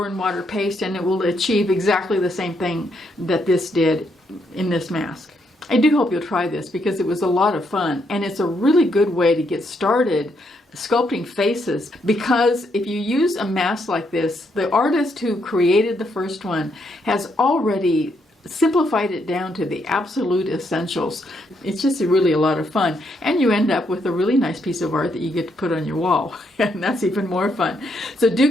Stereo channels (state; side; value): normal; both; correlation 0.76